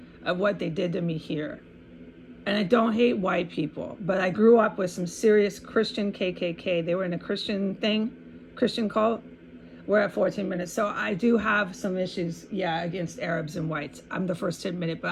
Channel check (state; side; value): identical; both; correlation 1.00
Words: of what they did to me here. And I don't hate white people, but I grew up with some serious Christian KKK. They were in a Christian cult. We're at 14 minutes. So I do have some issues, against Arabs and whites. I'm the first to admit it, but